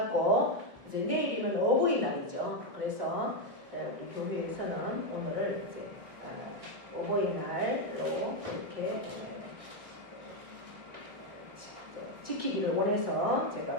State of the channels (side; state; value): left; late; 1.6 ms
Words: 이제 내일이면 어버이날이죠. 그래서 우리 교회에서는 오늘 이제 어버이날로 이렇게 지키기를 원해서 제가